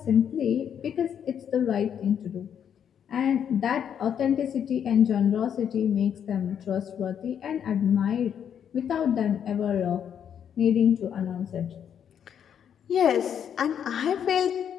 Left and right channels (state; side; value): quieter; right; 8.6 dB